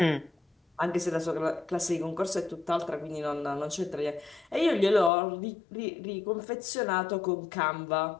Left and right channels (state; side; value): drops out; right; at 5.1 s